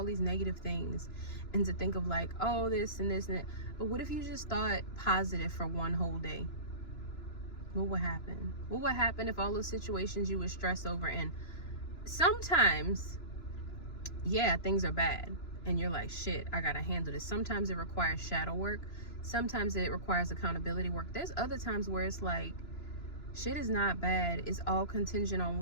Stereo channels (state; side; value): late; right; 3.0 ms